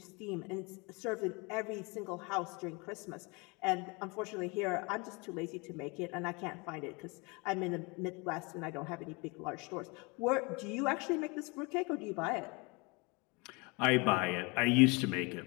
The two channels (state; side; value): quieter; right; 28.5 dB